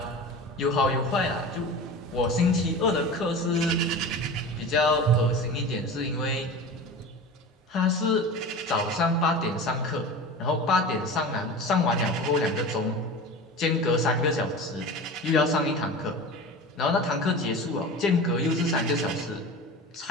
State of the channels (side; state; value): both; normal; correlation 0.32